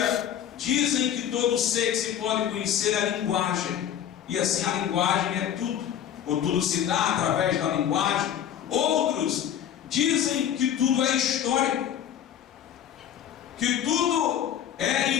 dizem que todo ser que se pode conhecer é a linguagem. E assim a linguagem é tudo, ou tudo se dá através da linguagem. Outros dizem que tudo é histórico, que tudo é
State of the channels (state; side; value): quieter; right; 9.9 dB